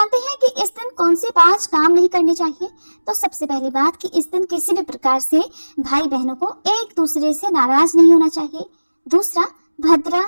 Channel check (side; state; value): both; inverted; correlation -1.00